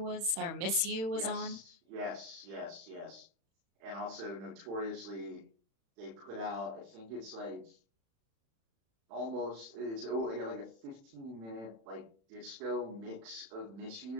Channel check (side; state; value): left; late; 36 ms